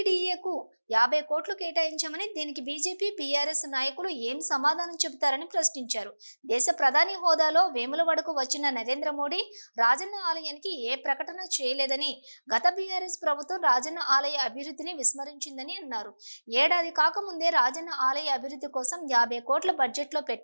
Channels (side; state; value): both; inverted; correlation -1.00